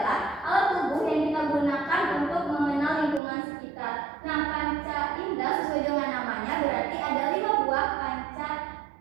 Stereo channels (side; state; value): left; drops out; at 3.2 s